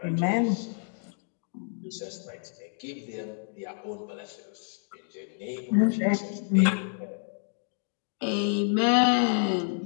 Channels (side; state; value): right; silent; 59 dB below the other